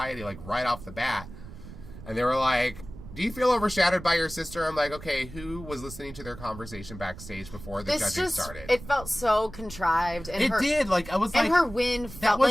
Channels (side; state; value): right; noise; rumble, 15 dB below the sound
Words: like right off the bat. And they were like, do you feel overshadowed by your sister? I'm like, okay, who was listening to their conversation backstage before the judging started? It felt so contrived. And it did. Like, I was like... And her win felt